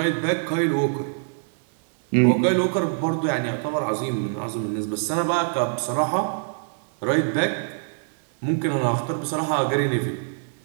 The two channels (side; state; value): left; silent; digital silence